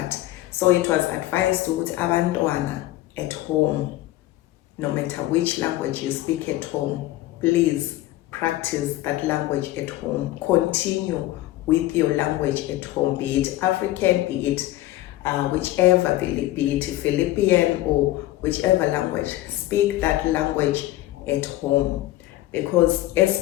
so it was advised to abantwana at home, no matter which language you speak at home, please practice that language at home. Continue with your language at home, be it African, be it whichever, be it Philippine or whichever language. Speak that language at home. Because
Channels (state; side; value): quieter; right; 16.2 dB